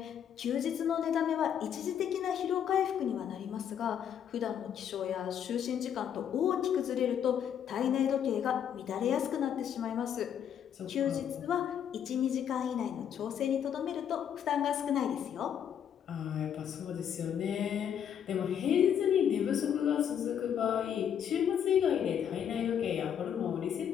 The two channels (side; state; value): right; quieter; 8.8 dB